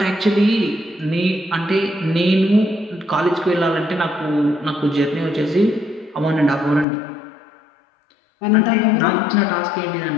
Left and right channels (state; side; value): drops out; right; at 6.9 s